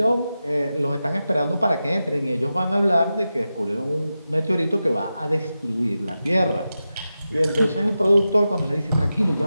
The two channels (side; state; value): both; inverted; correlation -0.92